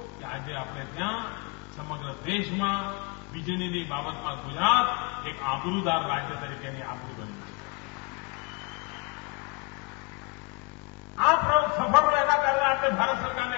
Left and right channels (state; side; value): quieter; right; 30.7 dB